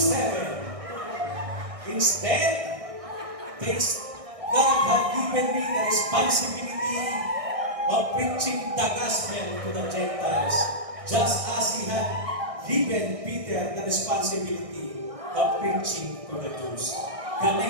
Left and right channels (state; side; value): late; left; 1.6 ms